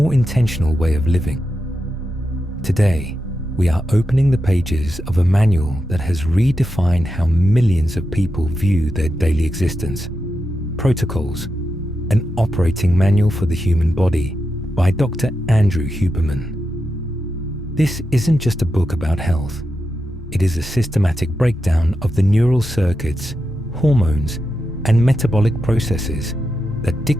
intentional way of living. Today, we are opening the pages of a manual that has redefined how millions of people view their daily existence. Protocols, an operating manual for the human body by Dr. Andrew Huberman. This isn't just a book about health. It is a systematic breakdown of the neural circuits, hormones, and metabolic processes that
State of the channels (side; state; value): both; normal; correlation 0.88